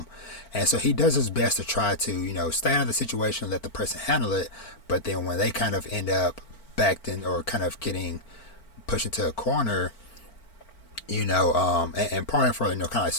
And so he does his best to try to, stay out of the situation, let the person handle it. But then when they kind of end up backed in or kind of getting pushed into a corner, and pardon for, kind of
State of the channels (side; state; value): right; late; 4.4 ms